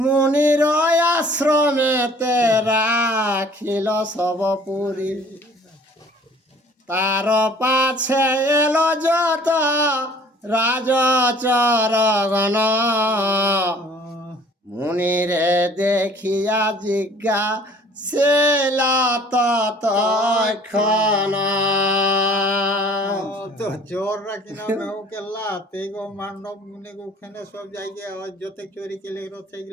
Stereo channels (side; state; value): both; normal; correlation 0.52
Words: আশ্রমেতে রাখিল সব পুরী তার পাছে এলো যত রাজচরগণ মুনিরে দেখিয়া জিজ্ঞা সেলা ততক্ষণ তো চোররা কিনা মেহুকে লাতে গো মান্ডব মুনি ওখানে সব জায়গায় যত চোরি কেলে